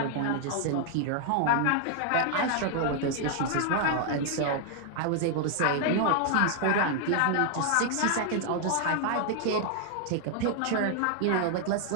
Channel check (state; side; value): different; both; correlation 0.00